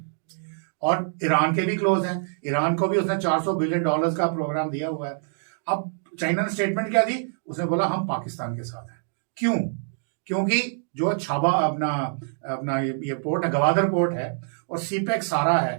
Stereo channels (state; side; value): silent; left; digital silence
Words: और ईरान के भी क्लोज हैं। ईरान को भी उसने $400 बिलियन का प्रोग्राम दिया हुआ है। अब चाइना ने स्टेटमेंट क्या दी, उसने बोला हम पाकिस्तान के साथ हैं। क्यों? क्योंकि जो छाबा अपना ये पोर्ट है, गवादर पोर्ट है, और सीपेक सारा है,